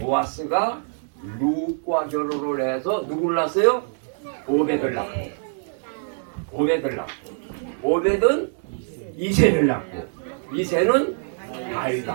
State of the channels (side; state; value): left; silent; digital silence